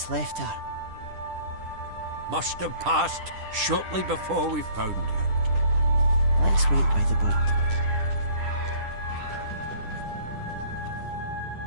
left her. Must have passed shortly before we found her. Let's wait by the boat.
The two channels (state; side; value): late; left; 10 ms